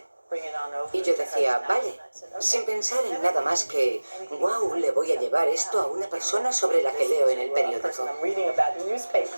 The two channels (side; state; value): both; inverted; correlation -1.00